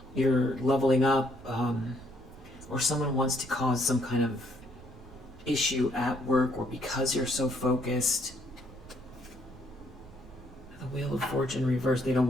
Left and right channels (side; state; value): right; noise; rumble, 20 dB below the sound